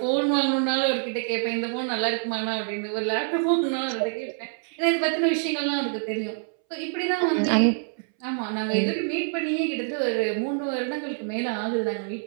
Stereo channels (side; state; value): left; silent; 61 dB below the other